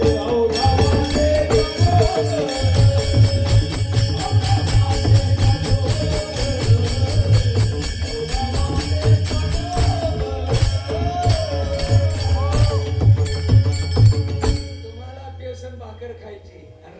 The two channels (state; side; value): identical; both; correlation 1.00